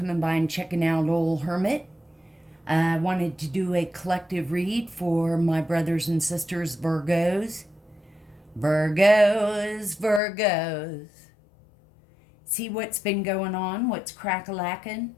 by and checking out Old Hermit. I wanted to do a collective read for my brothers and sisters, Virgos. Virgos. See what's been going on, what's crack-a-lacking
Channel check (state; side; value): drops out; right; at 10.2 s